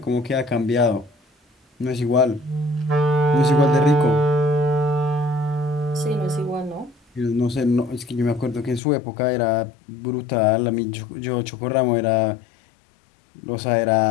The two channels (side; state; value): right; drops out; at 8.8 s